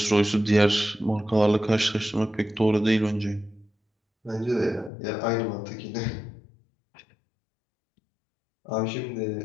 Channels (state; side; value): drops out; right; at 4.9 s